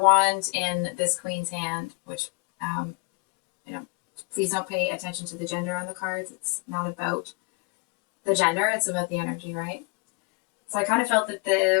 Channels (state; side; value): quieter; right; 30.8 dB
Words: in this Queen's hand, which please don't pay attention to the gender on the cards. It's not about the gender, it's about the energy, right? So I kind of felt that